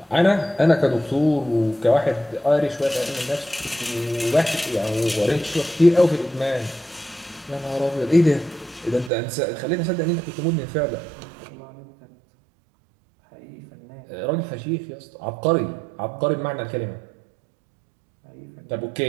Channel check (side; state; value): left; drops out; at 9.1 s